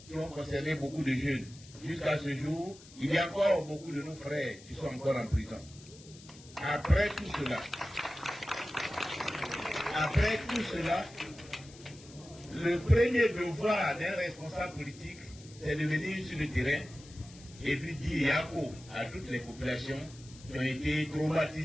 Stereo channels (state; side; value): noise; left; hiss, 21 dB below the sound